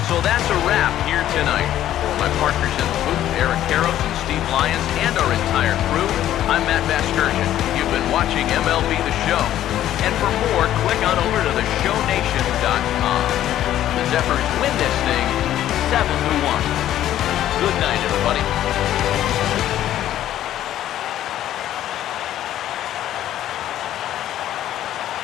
That's a wrap here tonight. For my partners in the booth, Eric Karros and Steve Lyons, and our entire crew, I'm Matt Vasgersian. You've been watching MLB The Show. And for more, click on over to theshownation.com. The Zephyrs win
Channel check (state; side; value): quieter; right; 12.3 dB